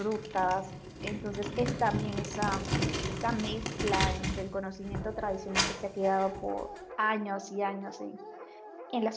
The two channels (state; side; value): identical; both; correlation 1.00